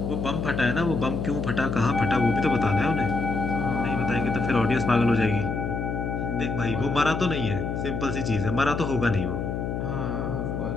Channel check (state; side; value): noise; left; hum, 3 dB below the sound